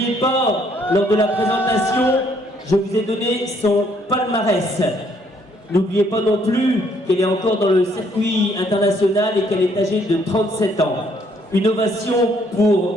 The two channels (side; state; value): both; normal; correlation 0.67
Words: pas, lors de la présentation, je vous ai donné son palmarès. N'oubliez pas non plus qu'elle est encore dans le circuit international et qu'elle est âgée de 37 ans. Une ovation